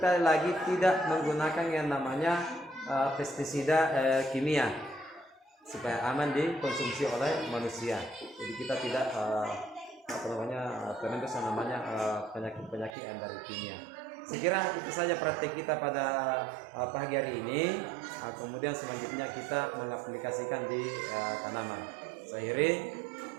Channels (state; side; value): drops out; left; at 12.9 s